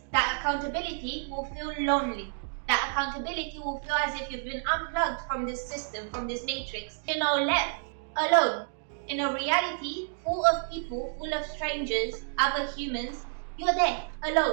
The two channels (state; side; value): silent; left; digital silence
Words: that accountability will feel lonely. That accountability will feel as if you've been unplugged from this system, from this matrix, left alone in a reality full of people, full of strangers, other humans. You're there